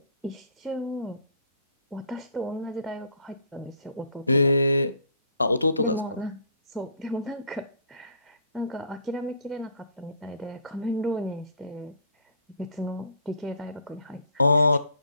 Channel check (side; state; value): both; inverted; correlation -0.56